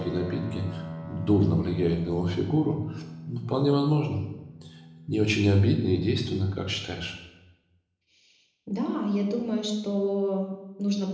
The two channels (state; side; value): identical; both; correlation 1.00